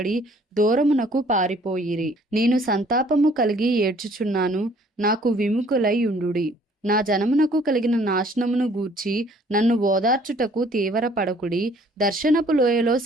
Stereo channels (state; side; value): normal; both; correlation 0.58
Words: దూరమునకు పారిపోయిరి. నేను సంతాపము కలిగి ఏడ్చుచున్నాను, నాకు విముఖులై ఉండుడి. నా జనమునకు కలిగిన నాశనమును గూర్చి నన్ను ఓదార్చుటకు తీవ్రపడకుడి. దర్శనపు లోయలో